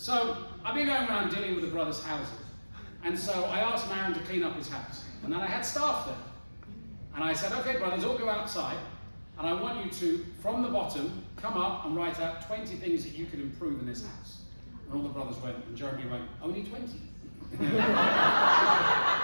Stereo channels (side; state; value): both; inverted; correlation -1.00